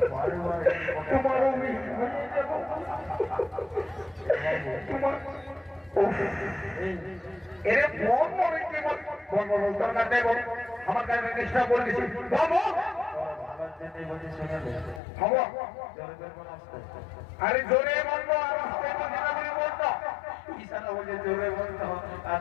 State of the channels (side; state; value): right; drops out; at 15.0 s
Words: তোমার তোমার এরে মন মনে কি বল দরকার নেই বল আমার কাছে চেষ্টা করে দিছি বাবু আরে জোরে বলবো আর জোরে বলতো আর